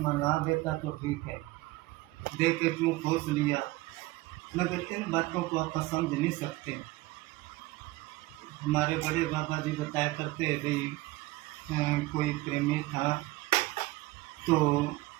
ना देता तो ठीक है, दे के क्यों खोस लिया। मगर इन बातों को आप समझ नहीं सकते। हमारे बड़े बाबा जी बताया करते हैं भाई, कोई प्रेमी था तो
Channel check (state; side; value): quieter; left; 19.7 dB